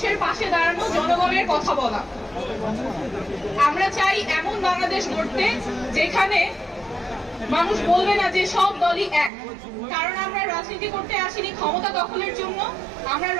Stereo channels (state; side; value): drops out; left; at 9.3 s